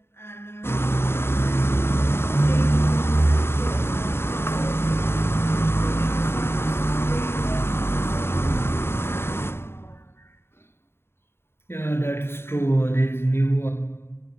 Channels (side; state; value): right; late; 0.11 ms